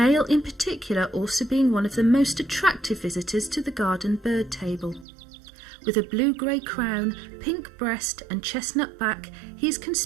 in particular also being one of the most attractive visitors to the garden bird table. With a blue-grey crown, pink breast and chestnut back, he is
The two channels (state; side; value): drops out; left; at 5.1 s